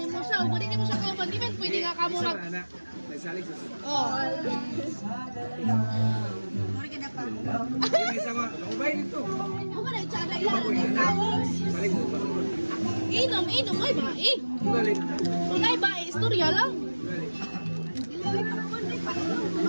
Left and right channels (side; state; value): both; inverted; correlation -1.00